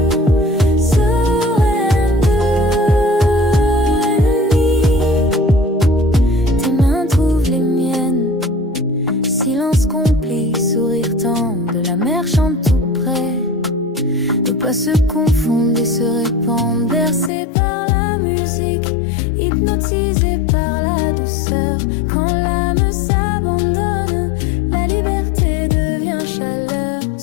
Se confondent et se répandent, bercés par la musique, hypnotisés par la douceur. Quand l'âme s'abandonne, la liberté devient chaleur.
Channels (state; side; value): drops out; right; at 17.3 s